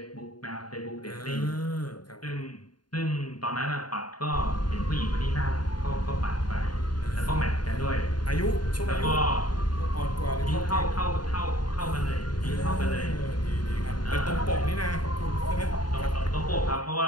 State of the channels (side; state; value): right; late; 0.71 ms